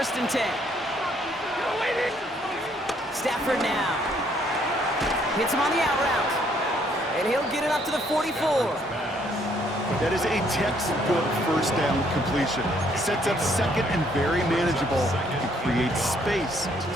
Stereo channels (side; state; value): both; normal; correlation 0.67